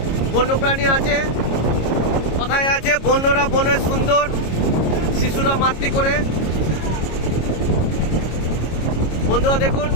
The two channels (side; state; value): right; late; 26 ms